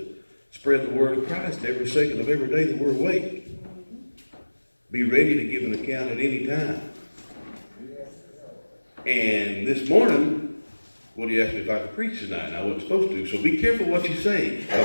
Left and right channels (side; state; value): both; inverted; correlation -1.00